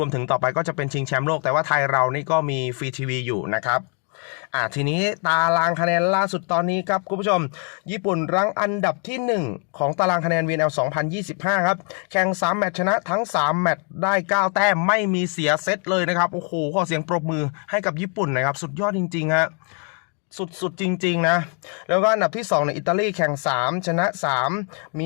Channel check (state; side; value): quieter; right; 39.9 dB